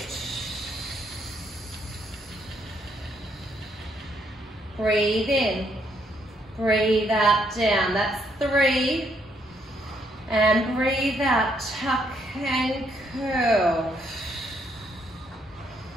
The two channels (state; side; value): normal; both; correlation 0.73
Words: Breathe in. Breathe out, down. That's 3. And breathe out, tuck and curl.